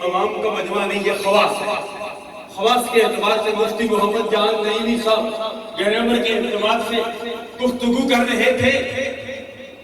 عوام کا مجمع نہیں، یہ خواص ہے۔ خواص کے اعتبار سے مفتی محمد جان نعیمی صاحب گرامر کے اعتبار سے گفتگو کر رہے تھے۔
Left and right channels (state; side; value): identical; both; correlation 1.00